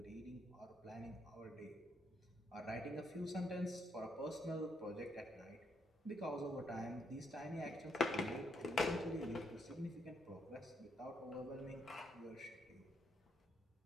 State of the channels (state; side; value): normal; both; correlation 0.75